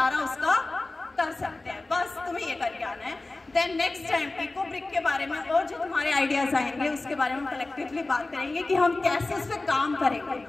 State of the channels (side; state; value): right; quieter; 3.1 dB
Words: उसका कर सकते हैं। बस तुम्हें ये करके आना है। Then next time eco brick के बारे में और जो तुम्हारे आइडियाज आएंगे उसके बारे में कलेक्टिवली बात करेंगे कि हम कैसे उस पर काम